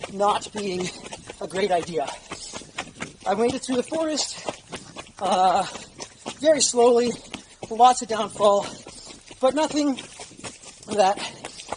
not being a great idea. I made it through the forest very slowly, lots of downfall, but nothing that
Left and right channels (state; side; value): identical; both; correlation 1.00